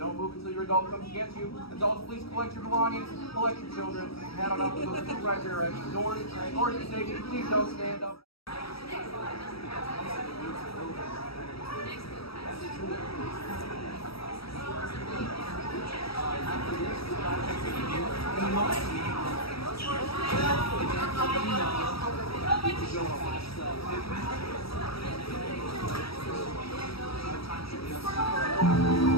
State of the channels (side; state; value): right; late; 0.76 ms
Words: move until your adult comes to get you. Adults, please collect your belongings, collect your children, head on up to those 2 right directions. Doors to safety, please don't stand up.